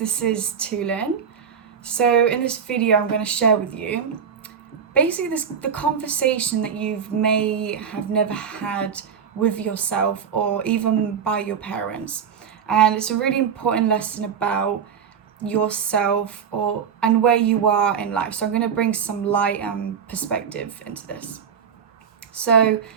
is Tulin. So in this video I'm going to share with you basically the conversation that you may have never had with yourself or even by your parents. And it's a really important lesson about yourself and where you are in life. So I'm going to bring some light and perspective into this. So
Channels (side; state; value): left; quieter; 7.2 dB